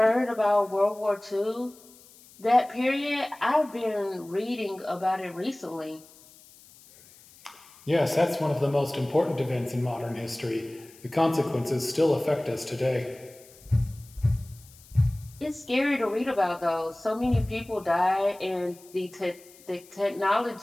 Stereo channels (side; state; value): left; noise; hiss, 24 dB below the sound